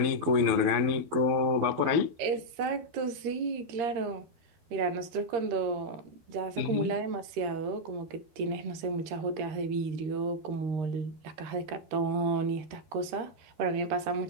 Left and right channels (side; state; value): left; late; 13 ms